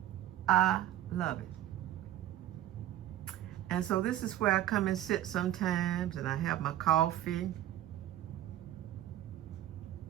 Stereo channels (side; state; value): left; quieter; 13.1 dB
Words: I love it. And so this is where I come and sit sometimes, and I have my coffee,